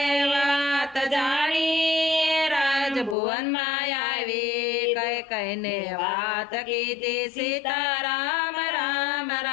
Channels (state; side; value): drops out; right; at 3.2 s